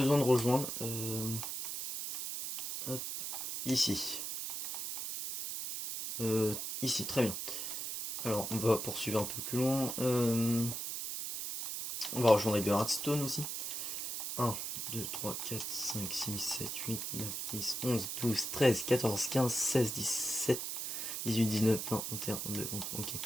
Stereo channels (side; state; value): right; noise; hiss, 4 dB below the sound